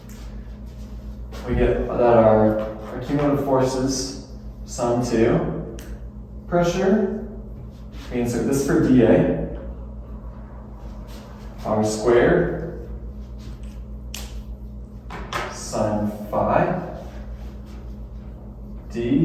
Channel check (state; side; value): identical; both; correlation 1.00